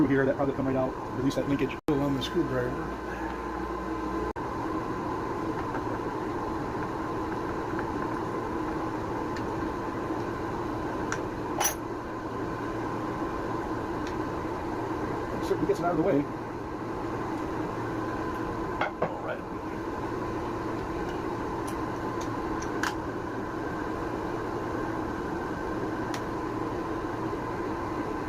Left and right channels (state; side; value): identical; both; correlation 1.00